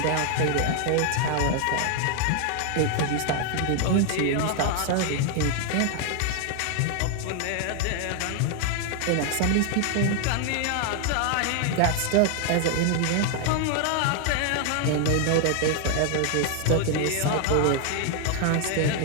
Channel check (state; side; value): different; both; correlation 0.00